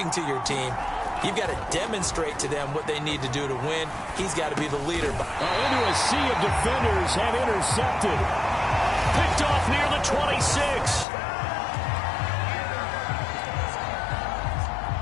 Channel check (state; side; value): drops out; right; at 11.1 s